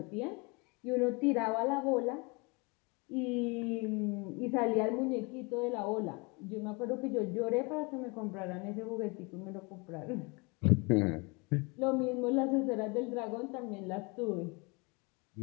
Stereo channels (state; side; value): quieter; right; 29.1 dB